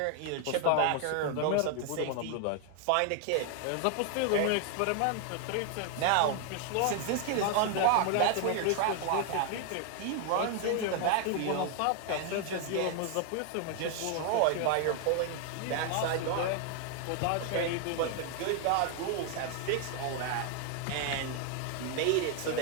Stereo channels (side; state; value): both; different; correlation 0.00